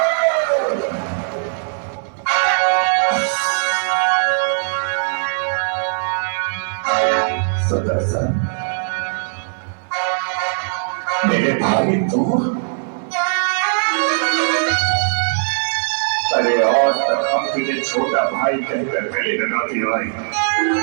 सुदर्शन, मेरे भाई तू, अरे आज तक हम तुझे छोटा भाई कहकर गले लगाती आई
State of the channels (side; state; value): left; silent; 63 dB below the other